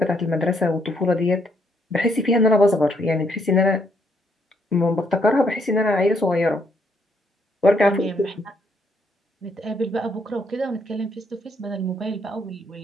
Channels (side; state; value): both; normal; correlation 0.72